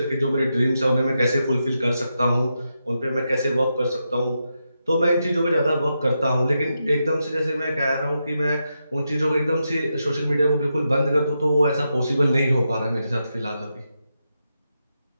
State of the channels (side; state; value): both; inverted; correlation -0.86